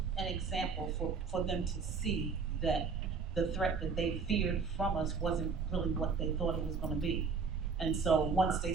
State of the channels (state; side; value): quieter; left; 5.1 dB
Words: an example for them to see that the threat that they feared from us wasn't really what they thought it was going to be. And so once they